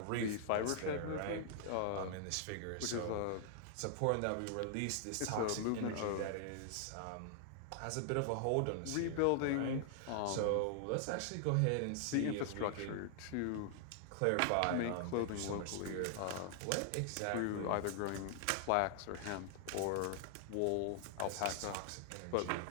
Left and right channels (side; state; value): both; different; correlation 0.00